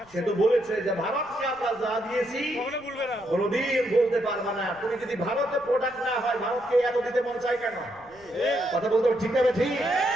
সে তো বলেছে যে ভারতকে আমরা যা দিয়েছি কোনদিন বলতে পারবা না। তুমি যদি ভারতের প্রোডাক্ট না হয় ভারতকে এত দিতে মন চাই কেন? কথা বলতে ঠিক না ঠিক?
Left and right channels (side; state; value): left; noise; rumble, 28 dB below the sound